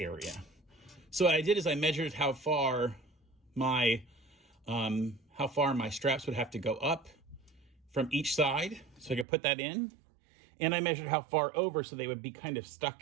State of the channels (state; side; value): drops out; left; at 9.2 s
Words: So what I did is I measured how far my straps would have to go up from each side, so I could put that in. And I measured how far over so they would be kind of